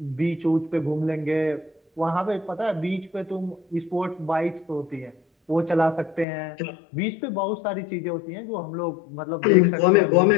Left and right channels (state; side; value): drops out; right; at 6.2 s